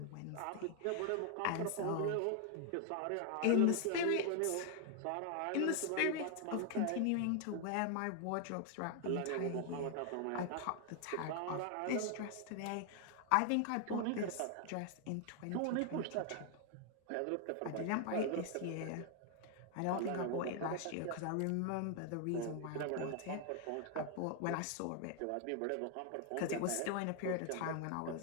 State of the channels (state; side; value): different; both; correlation 0.00